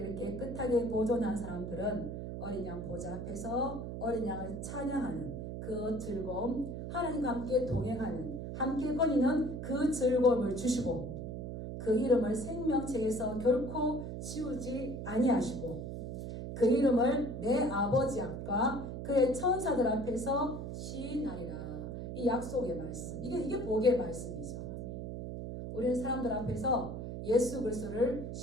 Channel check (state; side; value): noise; right; hum, 6 dB below the sound